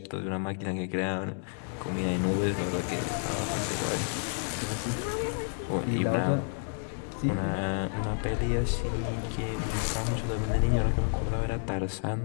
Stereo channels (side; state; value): right; silent; 57 dB below the other